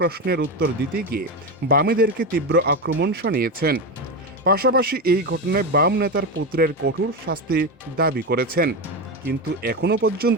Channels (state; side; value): normal; both; correlation 0.16